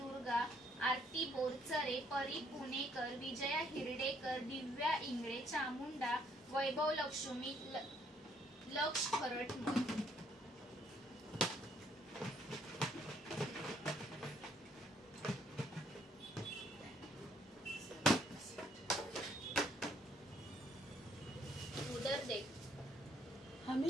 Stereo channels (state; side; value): normal; both; correlation 0.67